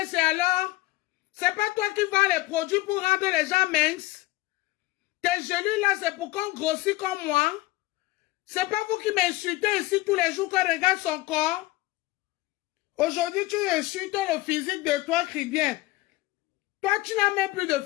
alors? C'est pas toi qui vends les produits pour rendre les gens minces? Tes genoux là, c'est pour qu'on grossit comme moi? C'est pas vous qui m'insultez ici tous les jours qu'on regarde son corps? Aujourd'hui, tu insultes le physique de toi qui vient. Toi, tu n'as même plus de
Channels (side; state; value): right; quieter; 19.1 dB